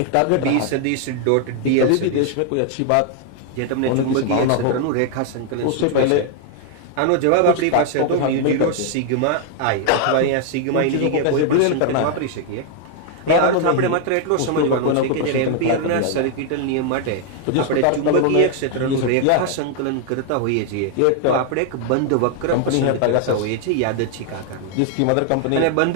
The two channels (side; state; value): both; different; correlation 0.00